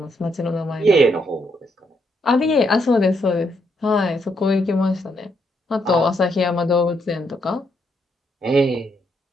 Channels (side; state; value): both; normal; correlation 0.76